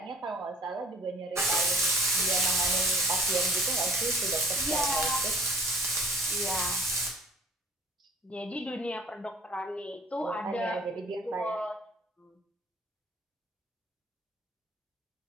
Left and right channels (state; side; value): normal; both; correlation 0.51